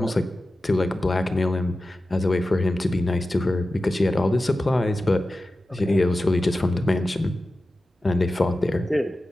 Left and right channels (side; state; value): both; normal; correlation 0.94